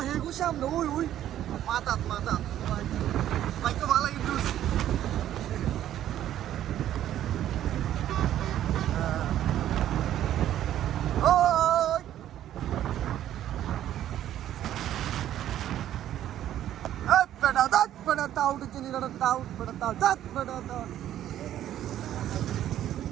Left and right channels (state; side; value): quieter; left; 11.8 dB